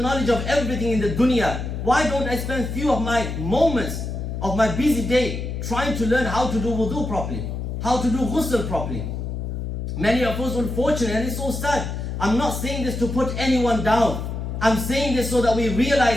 knowledge of everything in the dunya. Why don't I spend few of my moments of my busy day trying to learn how to do wudu properly, how to do ghusl properly? Many of us, unfortunately, and it's so sad. I'm not saying this to put anyone down. I'm saying this so that we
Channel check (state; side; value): noise; left; hum, 4 dB below the sound